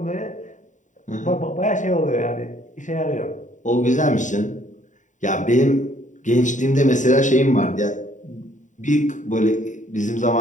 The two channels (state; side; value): late; right; 0.36 ms